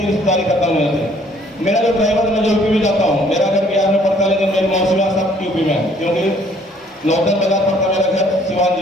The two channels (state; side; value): normal; both; correlation 0.60